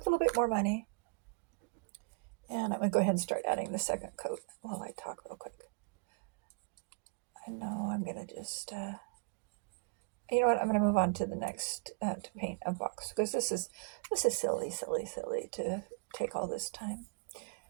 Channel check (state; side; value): quieter; left; 36.4 dB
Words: bit more money. And I'm going to go ahead and start adding the second coat while I talk real quick. I know I'm going to just, you know what, I'm going to move on to the next, to paint a box, because this is silly to take all this time.